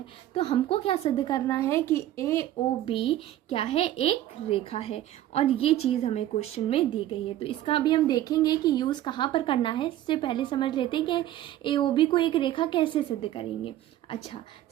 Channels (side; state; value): left; quieter; 13.2 dB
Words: तो हमको क्या सिद्ध करना है कि AOB क्या है, एक रेखा है, और ये चीज़ हमें क्वेश्चन में दी गई है। तो इसका अभी हम देखेंगे कि यूज़ कहाँ पर करना है। इससे पहले समझ लेते हैं कि AOB को एक रेखा कैसे सिद्ध करेंगे। अच्छा,